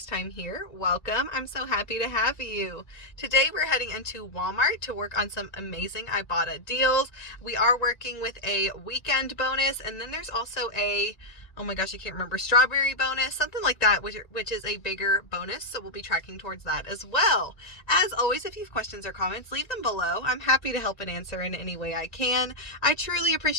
time here, welcome. I'm so happy to have you. Today we're heading into Walmart to work on some amazing Ibotta deals. We are working with a weekend bonus, and then there's also a, oh my gosh, I can't remember, strawberry bonus, something like that, which is a bigger bonus, so we'll be tracking towards that as well. As always, if you have questions or comments, leave them below. I'm happy to help and answer in any way I can. I truly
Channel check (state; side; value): late; right; 1.9 ms